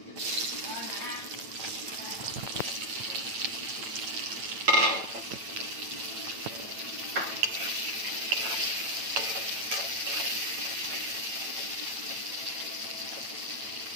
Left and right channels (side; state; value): left; late; 9.0 ms